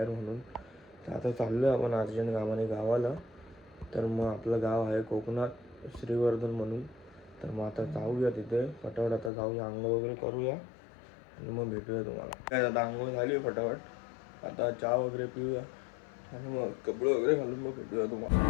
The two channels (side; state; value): right; drops out; at 9.3 s